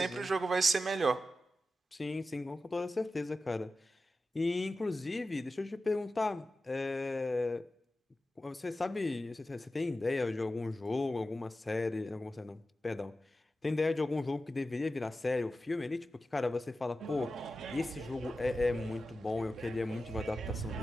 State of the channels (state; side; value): normal; both; correlation 0.92